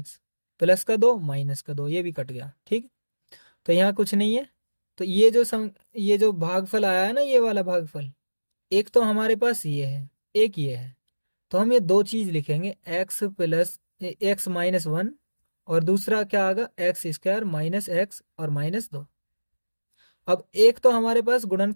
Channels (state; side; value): inverted; both; correlation -1.00